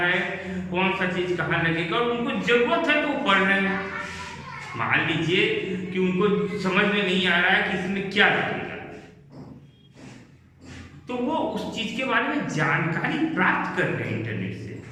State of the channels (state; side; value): identical; both; correlation 1.00